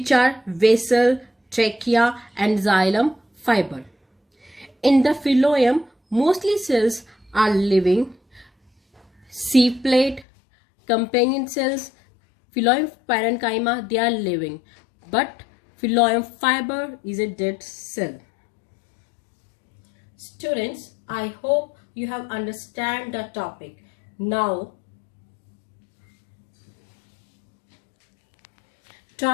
are vessel, trachea and xylem fiber. In the phloem, mostly cells are living, sieve plate, companion cells, phloem parenchyma, they are living, but phloem fiber is a dead cell. Students, I hope you have understand the topic. Now,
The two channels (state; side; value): drops out; right; at 10.2 s